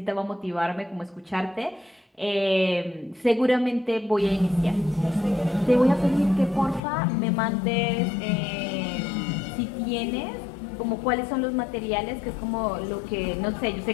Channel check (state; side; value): drops out; right; at 6.8 s